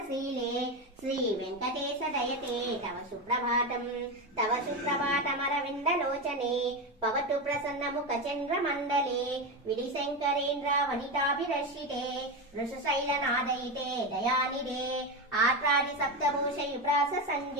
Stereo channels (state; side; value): normal; both; correlation 0.16